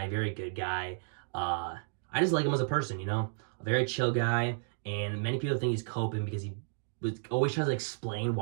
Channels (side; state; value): left; silent; digital silence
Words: very good guy. I just like him as a person, you know? A very chill guy. And many people think he's coping because he always tries to explain